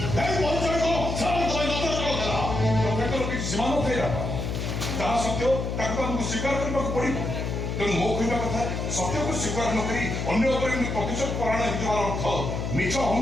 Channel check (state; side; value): noise; left; hum, 3 dB below the sound